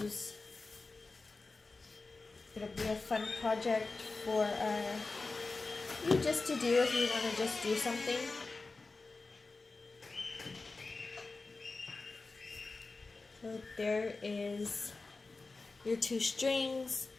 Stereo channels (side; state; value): right; quieter; 3.7 dB